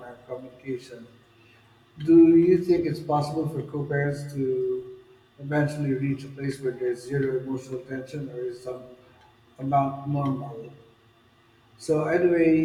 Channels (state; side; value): identical; both; correlation 1.00